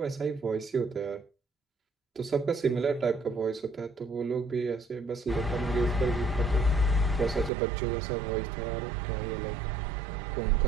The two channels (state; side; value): drops out; left; at 7.5 s